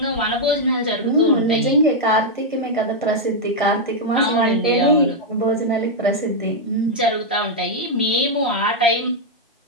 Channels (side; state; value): both; normal; correlation -0.02